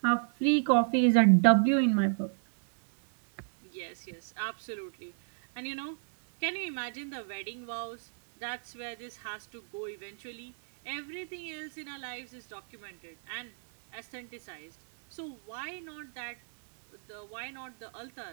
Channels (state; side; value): silent; left; digital silence